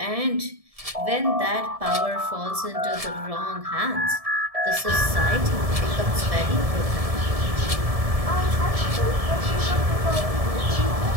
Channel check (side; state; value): left; late; 1.7 ms